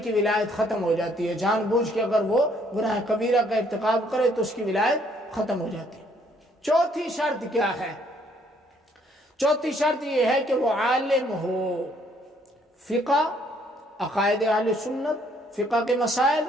ولایت ختم ہو جاتی ہے۔ جان بوجھ کے اگر وہ گناہ کبیرہ کا ارتکاب کرے تو اس کی ولایت ختم ہو جاتی ہے۔ چوتھی شرط کیا ہے؟ چوتھی شرط یہ ہے کہ وہ عالم ہو، فقہ، عقائد اہل سنت، فقہ کے مسائل،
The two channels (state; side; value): normal; both; correlation 0.66